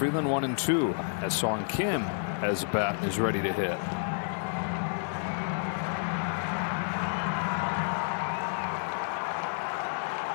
1 and 2. As Song Kim has a bat and is ready to hit.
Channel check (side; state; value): right; silent; 58 dB below the other